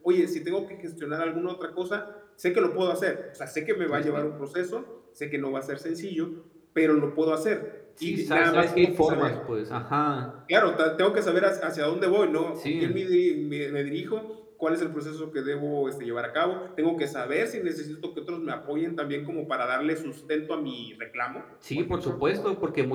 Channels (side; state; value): both; identical; correlation 1.00